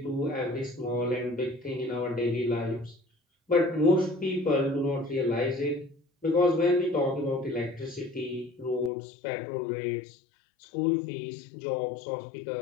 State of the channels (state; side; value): drops out; right; at 8.9 s